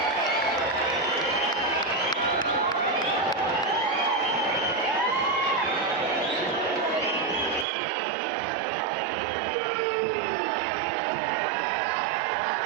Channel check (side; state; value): left; drops out; at 7.7 s